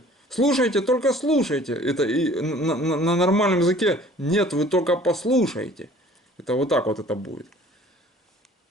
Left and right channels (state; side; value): normal; both; correlation 0.51